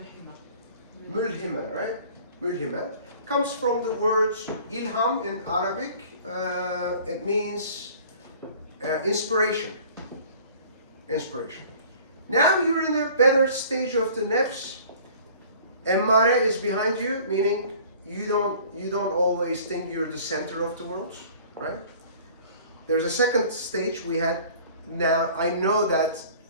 Mulhima, right? Mulhima comes from the word ilham in Arabic. It means inspiration. Inspiration. Now you're in a better stage of the nefs. Emmare is behind you, meaning you don't always think you're the center of the world, right? There's a second stage we had. Now I know that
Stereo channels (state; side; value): inverted; both; correlation -0.49